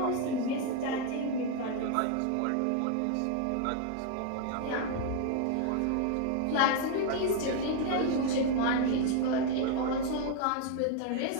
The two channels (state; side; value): different; both; correlation 0.01